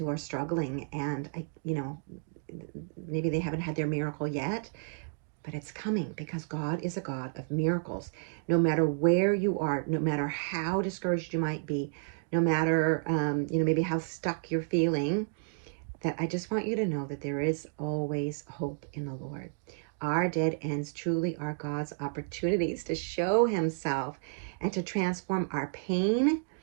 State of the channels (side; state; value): left; silent; digital silence